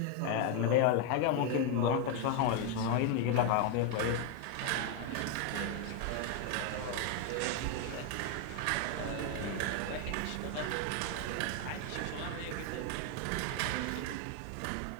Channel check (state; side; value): different; both; correlation 0.01